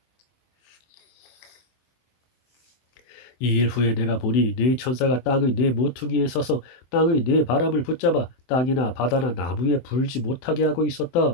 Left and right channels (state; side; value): late; right; 24 ms